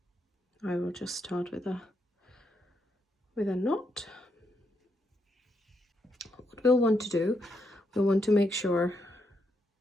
I will just start with a knot. What we'll want to do, we'll want to make sure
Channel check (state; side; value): normal; both; correlation 0.79